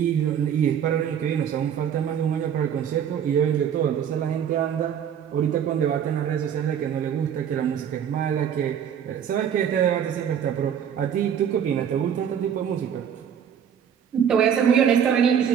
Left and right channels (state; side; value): quieter; left; 8.6 dB